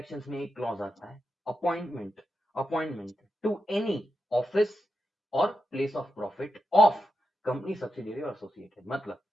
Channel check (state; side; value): normal; both; correlation 0.87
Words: में एक क्लॉज आता है, appointment, appointment to any office और place of profit of company subsidiary और एसोसिएटेड, मतलब